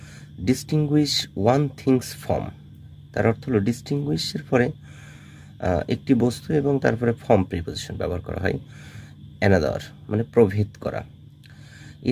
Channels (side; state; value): both; identical; correlation 1.00